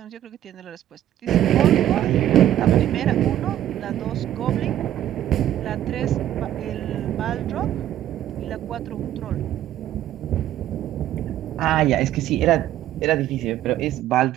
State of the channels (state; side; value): quieter; left; 12.2 dB